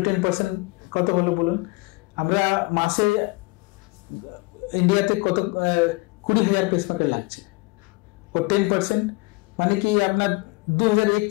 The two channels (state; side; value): quieter; right; 24.9 dB